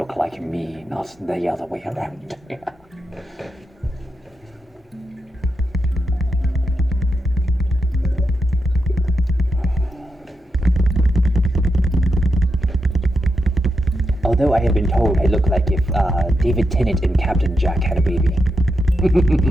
like me, not the other way around. Although I have been told I look like if David Tennant and Captain Jack had a baby.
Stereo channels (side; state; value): both; normal; correlation 0.85